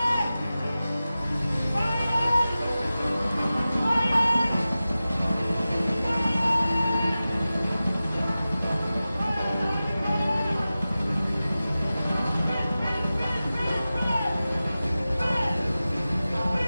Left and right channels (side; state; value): both; inverted; correlation -0.95